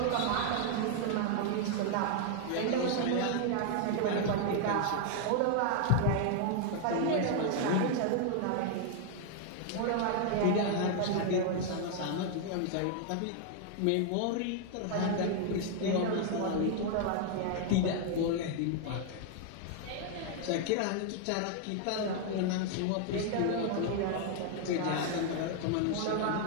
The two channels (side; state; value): both; different; correlation 0.00